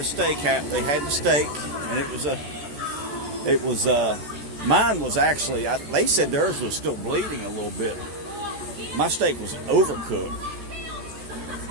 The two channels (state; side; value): late; left; 14 ms